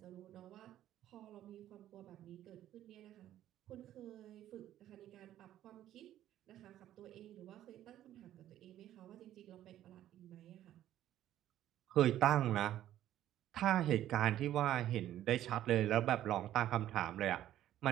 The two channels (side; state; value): left; quieter; 12.5 dB